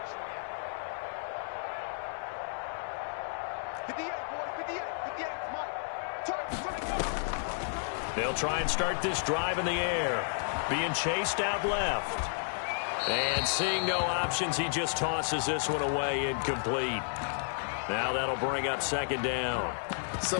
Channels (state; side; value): silent; right; 56 dB below the other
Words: 58, boys. 58. 58. Mike. Turn. They'll try and start this drive in the air. Being chased out left. And seeing no options, he just tosses this one away, incomplete. Now that'll bring up 2nd down. So